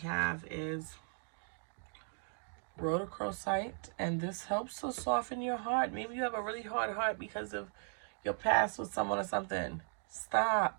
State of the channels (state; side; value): silent; left; 53 dB below the other